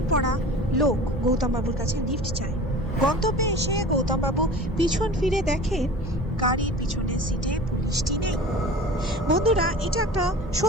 পরা লোক গৌতম বাবুর কাছে লিফট চায়। গন্তব্যে এসে গৌতম বাবু পিছন ফিরে দেখেন গাড়ির পিছনের সিটে পুলিশটি নেই। বন্ধুরা, এটা একটা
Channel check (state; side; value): normal; both; correlation 0.39